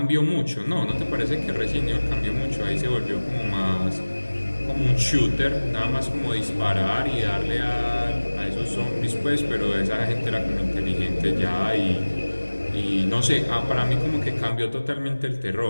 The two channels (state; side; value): inverted; both; correlation -1.00